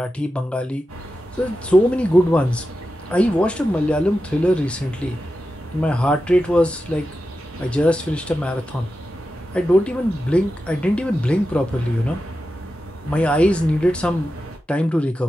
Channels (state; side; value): normal; both; correlation 0.91